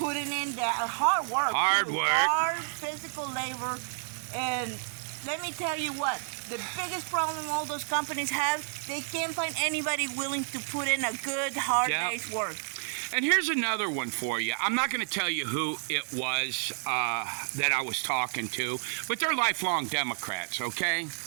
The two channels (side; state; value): left; silent; digital silence